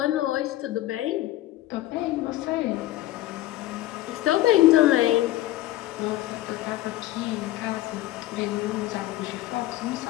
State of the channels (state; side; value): quieter; right; 15.3 dB